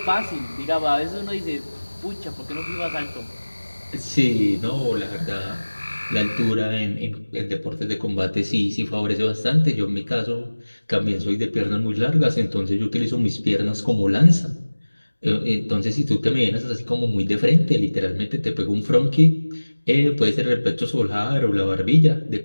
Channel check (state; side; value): inverted; both; correlation -1.00